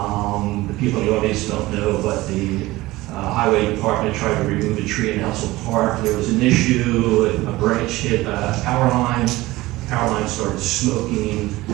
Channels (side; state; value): left; quieter; 18.8 dB